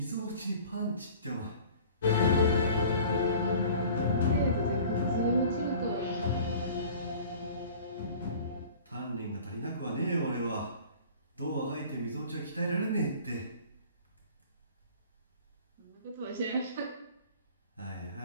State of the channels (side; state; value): both; inverted; correlation -0.45